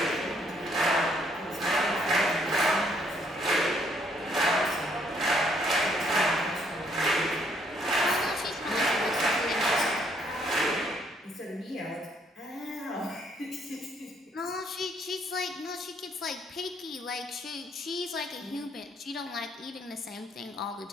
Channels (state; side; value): normal; both; correlation 0.68